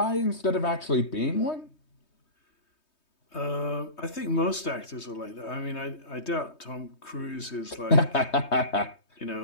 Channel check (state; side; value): late; right; 3.2 ms